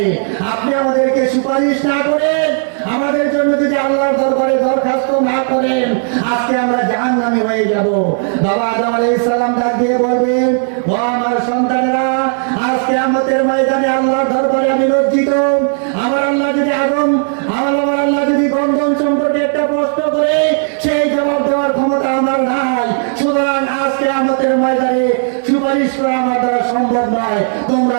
আপনি আমাদেরকে সুপারিশ না করেন, আমাদের জন্য যদি আল্লাহর দরবারে দরখাস্ত না করেন, আজকে আমরা জাহান্নামী হয়ে যাব। বাবা আদম আলাইহিস সালাম ডাক দিয়ে বলবেন, ও আমার সন্তানেরা, আজ কিয়ামতের ময়দানে আল্লাহর দরবারে আমি লজ্জিত। আমার আল্লাহ যদি গন্ধন সম্পর্কে একটা প্রশ্ন করে, সেই জবাব দেওয়ার ক্ষমতা আমার নাই। সুতরাং আজ কিয়ামতের ময়দানে সুপারিশ করা আমার দ্বারা সম্ভব নয়, তোমরা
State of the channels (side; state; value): left; silent; 66 dB below the other